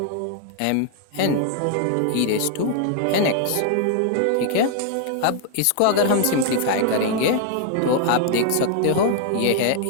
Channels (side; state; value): both; different; correlation 0.00